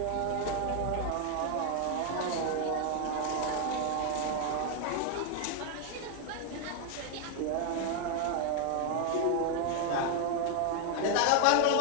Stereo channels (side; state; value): both; different; correlation 0.01